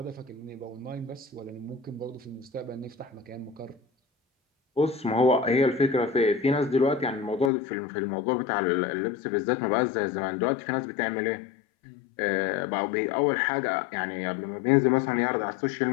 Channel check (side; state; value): right; drops out; at 7.5 s